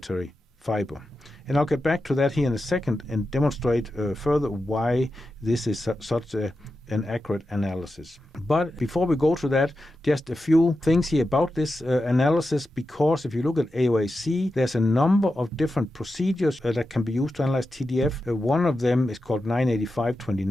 fiber. And I'll get back to that here in a second and demonstrate further why this is such an accurate analysis. But before we go to that, just a few things here about this analysis, because if you look at AOAC, there's a number of different procedures that can be used to analyze TDF. One of them is called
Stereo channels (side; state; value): both; normal; correlation 0.90